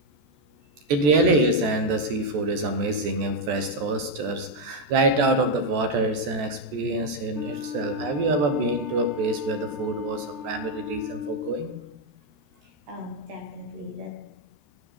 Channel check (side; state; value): left; late; 14 ms